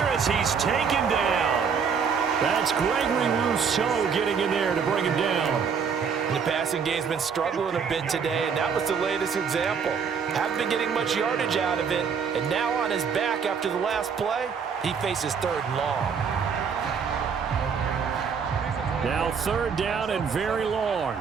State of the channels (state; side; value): quieter; left; 6.4 dB